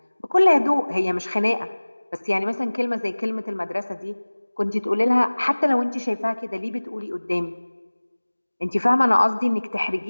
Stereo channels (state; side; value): inverted; both; correlation -1.00